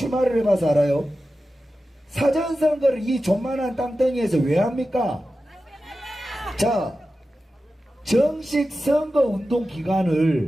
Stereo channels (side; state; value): both; normal; correlation 0.93